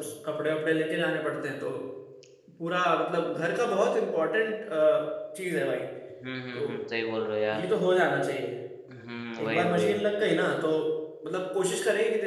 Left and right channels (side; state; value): both; identical; correlation 1.00